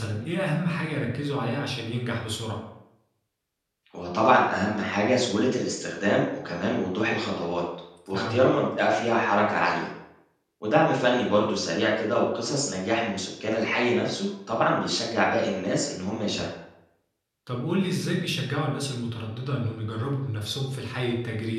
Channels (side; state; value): both; identical; correlation 1.00